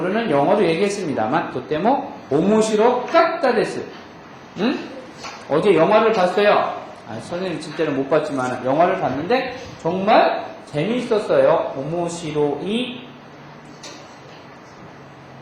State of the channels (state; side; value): identical; both; correlation 1.00